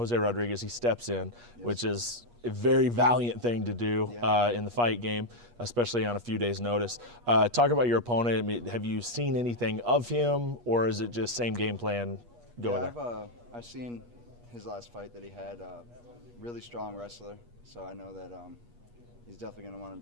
Rodriguez. He steps in, which is a very valiant thing to do in the fight game, especially on a few days' notice. Talk about your opponent. I mean, have you seen anything of him, or is it just same game plan going there? I've seen his last fight that he had. Really strong wrestler, so I know that he's definitely going to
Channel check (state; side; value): late; left; 8.4 ms